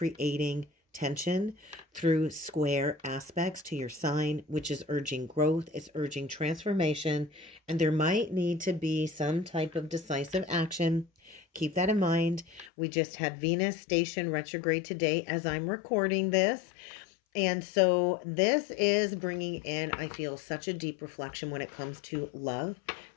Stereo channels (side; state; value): right; drops out; at 12.7 s